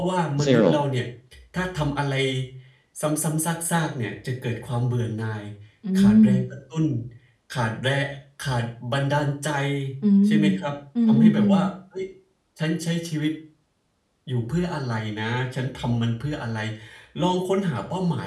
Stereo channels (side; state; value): both; identical; correlation 1.00